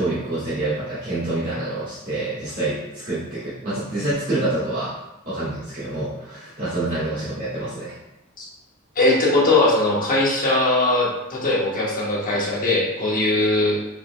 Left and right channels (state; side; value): normal; both; correlation 0.22